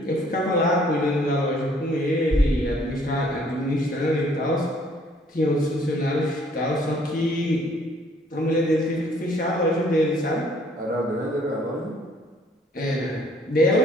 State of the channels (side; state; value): both; normal; correlation 0.61